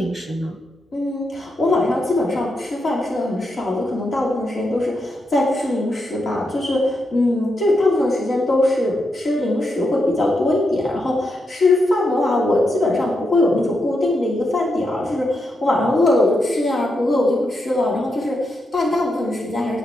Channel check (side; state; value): both; normal; correlation 0.84